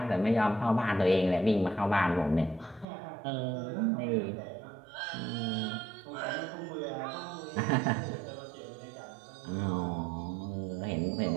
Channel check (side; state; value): left; drops out; at 2.9 s